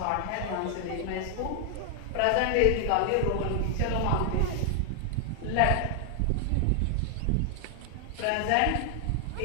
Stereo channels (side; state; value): both; different; correlation 0.00